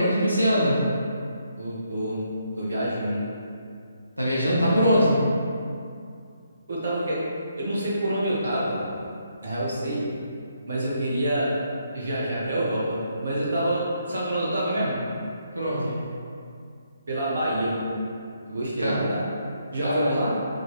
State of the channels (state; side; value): inverted; both; correlation -0.75